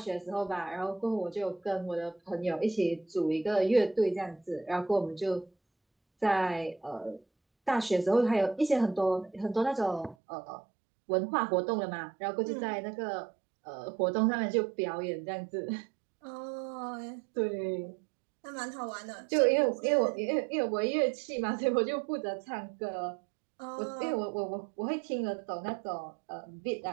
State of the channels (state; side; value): drops out; left; at 10.2 s